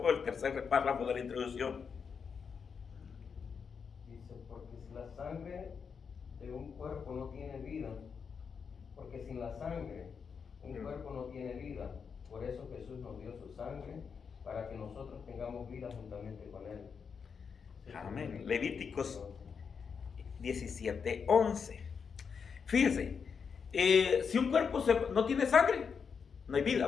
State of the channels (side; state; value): right; quieter; 6.1 dB